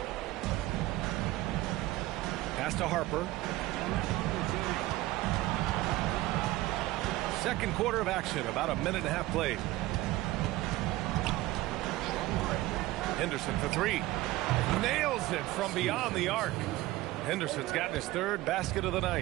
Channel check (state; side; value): quieter; left; 17.6 dB